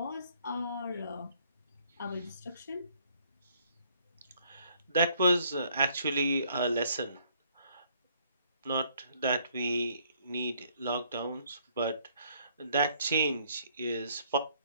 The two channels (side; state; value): both; inverted; correlation -0.65